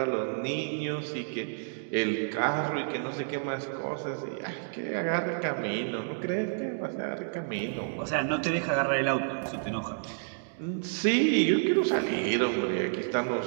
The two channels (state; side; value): silent; left; digital silence